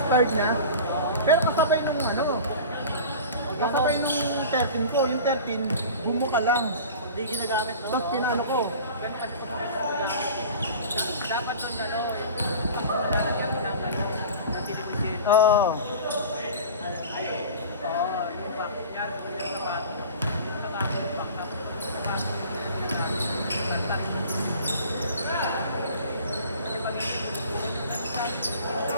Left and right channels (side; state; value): both; inverted; correlation -0.39